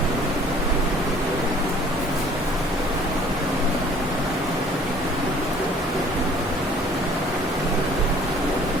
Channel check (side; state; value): both; normal; correlation 0.53